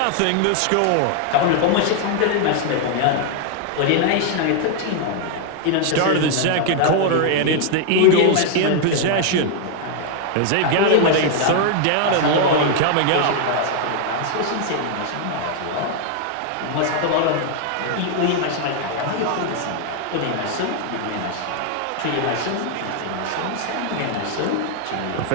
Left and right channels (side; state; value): both; different; correlation 0.00